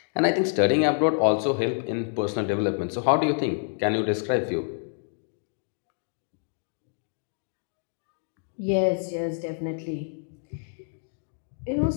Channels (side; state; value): right; silent; digital silence